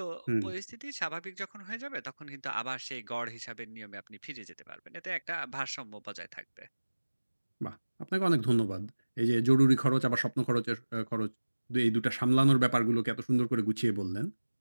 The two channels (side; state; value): both; inverted; correlation -1.00